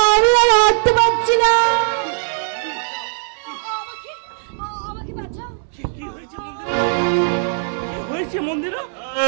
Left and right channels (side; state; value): left; silent; 65 dB below the other